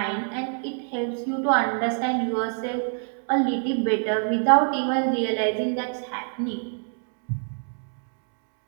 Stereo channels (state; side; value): silent; left; 55 dB below the other